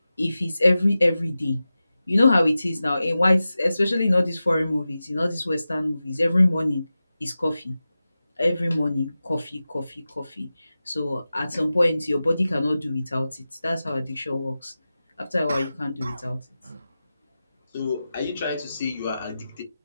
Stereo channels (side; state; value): both; inverted; correlation -0.94